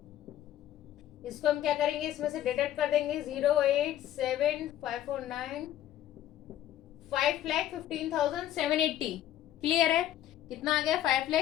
इसको हम क्या करेंगे? इसमें से डिडक्ट कर देंगे। 087,549 5,15,780। क्लियर है? कितना आ गया?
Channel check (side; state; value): right; quieter; 12.2 dB